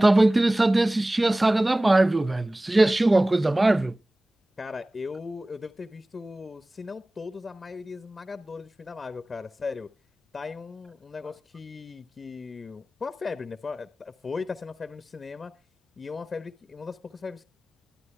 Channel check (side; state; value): both; normal; correlation 0.98